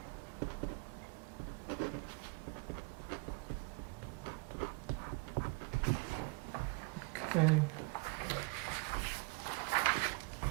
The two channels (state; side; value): quieter; left; 28.2 dB